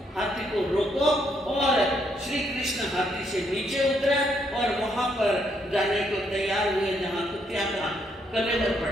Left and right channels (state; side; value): normal; both; correlation 0.74